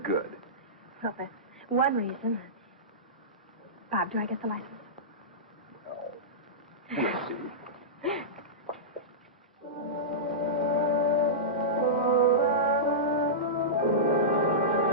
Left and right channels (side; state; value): both; normal; correlation -0.16